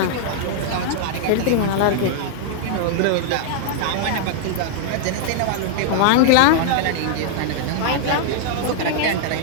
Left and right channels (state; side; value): different; both; correlation -0.01